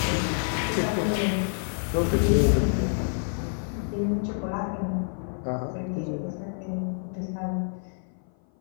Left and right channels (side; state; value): right; silent; 56 dB below the other